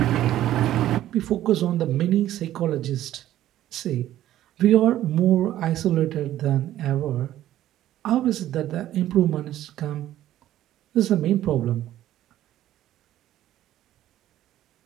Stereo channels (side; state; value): left; quieter; 13.1 dB